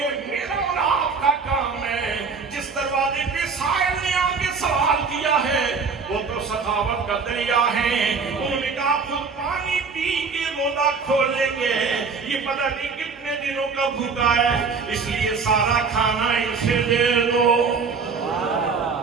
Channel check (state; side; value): quieter; left; 5.0 dB